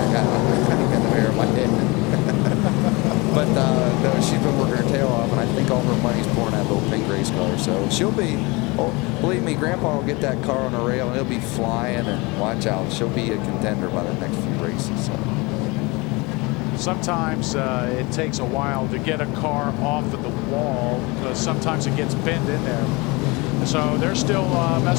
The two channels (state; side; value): quieter; right; 25.7 dB